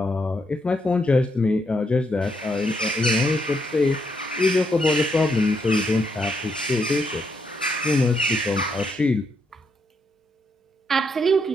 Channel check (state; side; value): normal; both; correlation 0.77